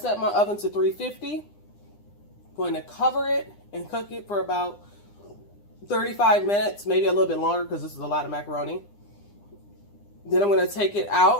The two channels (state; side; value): late; right; 9.9 ms